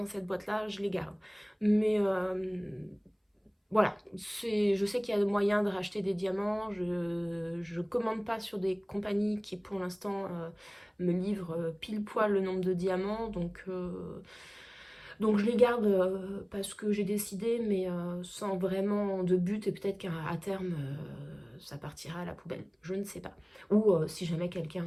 cette boîte là je les garde. Mais voilà, je sais qu'il y a moyen de racheter des diamants. Je commande pas sur des compagnies qui pour l'instant me livrent pile poil le nombre de diamants, donc je les garde parce que j'ai décidé, mais sans vraiment de but, et peut-être qu'à terme ça partira à la poubelle, je ne sais pas. Ou si jamais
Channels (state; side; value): identical; both; correlation 1.00